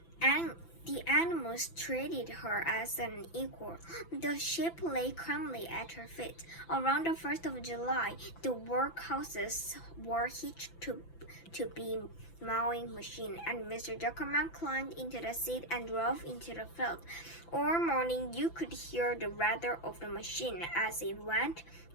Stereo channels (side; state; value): right; late; 5.9 ms